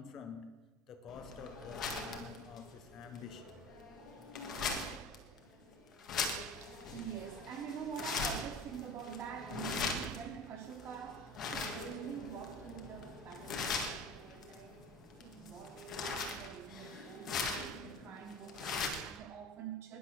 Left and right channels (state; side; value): normal; both; correlation 0.37